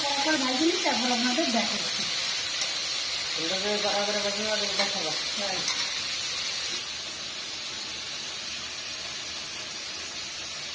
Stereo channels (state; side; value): identical; both; correlation 1.00